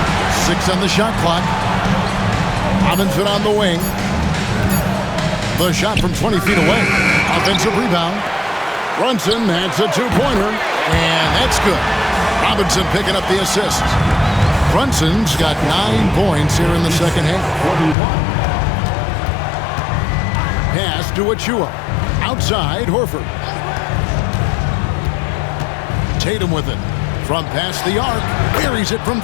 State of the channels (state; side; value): drops out; right; at 17.9 s